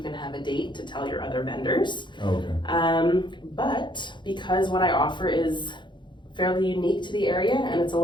can have a date to tell your other vendors. But because what I offer is fairly unique to the area and it's a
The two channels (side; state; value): right; late; 0.23 ms